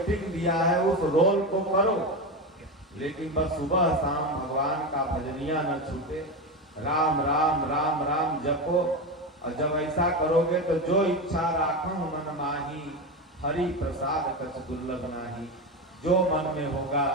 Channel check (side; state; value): both; normal; correlation 0.17